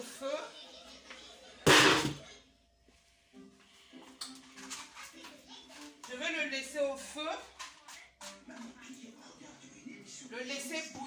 Je vais le laisser au feu. Le laisser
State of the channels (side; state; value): both; identical; correlation 1.00